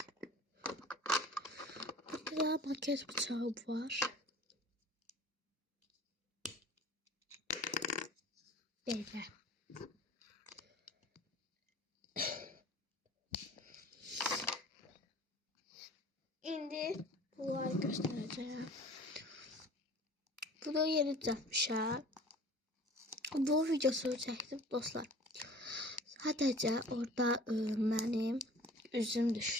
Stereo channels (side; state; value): both; normal; correlation 0.46